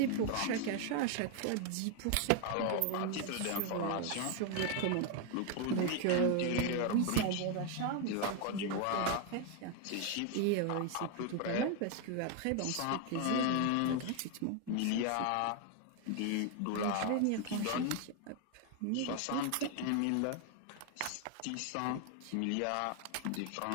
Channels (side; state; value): both; different; correlation 0.01